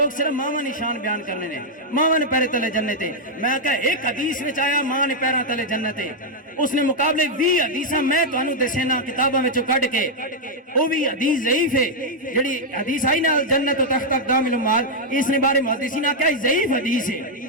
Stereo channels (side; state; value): both; normal; correlation -0.03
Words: صرف ماواں نشان بیان کرنے نے ماواں نے پیرے تلے جنت ہے میں کہا ایک حدیث وچ آیا ماں نے پیراں تلے جنت ہے اس نے مقابلے 20 حدیثاں میں تانوں دسینا کتاباں وچوں کڈ کے او بھی حدیث ضعیف ہے جڑی حدیث آئی نا جنت و تحت اقدام الامہات اس نے بارے محدثین نے کہا ضعیف حدیث ہے